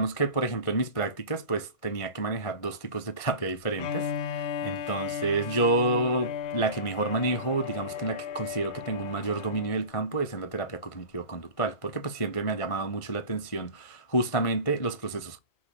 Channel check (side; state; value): right; late; 1.6 ms